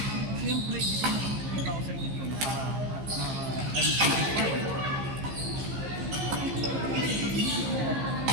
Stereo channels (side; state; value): left; late; 15 ms